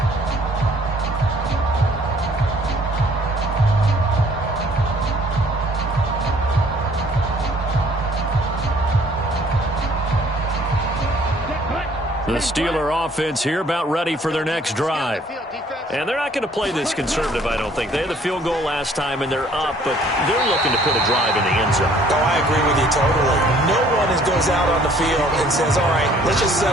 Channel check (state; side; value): normal; both; correlation 0.58